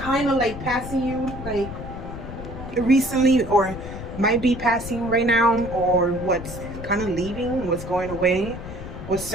of like passing you like recently, or might be passing right now, or what's kind of leaving, what's going away, what's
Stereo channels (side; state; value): left; noise; rumble, 10 dB below the sound